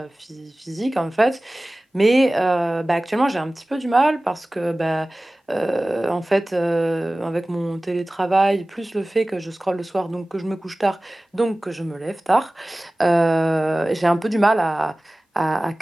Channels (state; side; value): normal; both; correlation 0.97